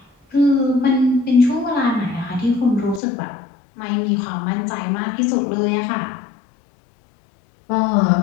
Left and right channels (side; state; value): right; drops out; at 3.0 s